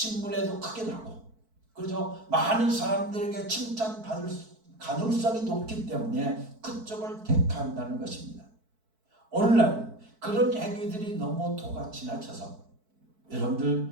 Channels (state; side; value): late; left; 4.6 ms